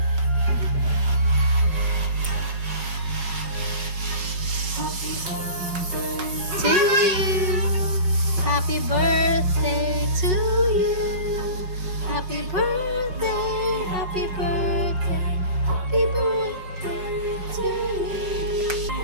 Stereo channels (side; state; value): left; late; 5.1 ms